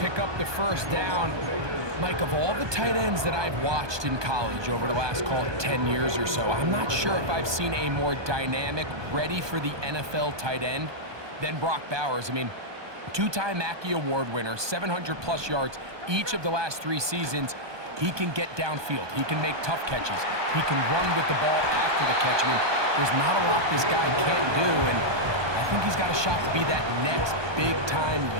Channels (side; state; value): left; late; 1.2 ms